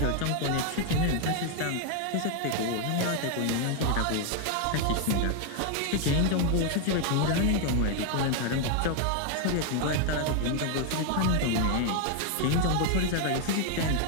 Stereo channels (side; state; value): both; different; correlation 0.00